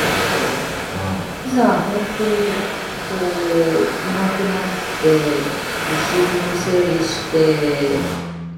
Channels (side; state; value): both; identical; correlation 1.00